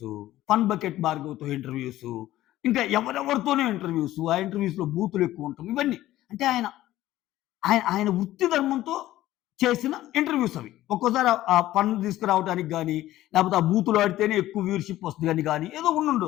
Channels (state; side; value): quieter; right; 14.8 dB